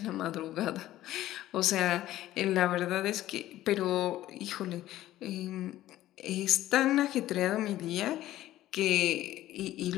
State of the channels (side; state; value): right; quieter; 14.5 dB